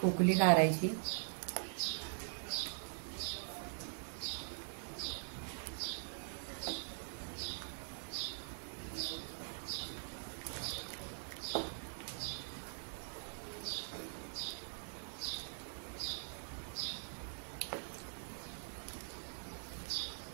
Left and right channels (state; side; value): silent; left; digital silence